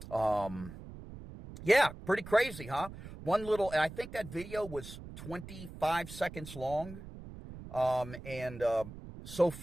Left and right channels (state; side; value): noise; right; rumble, 13 dB below the sound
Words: Yeah, pretty crazy, huh? I think that video was 25 seconds long. And so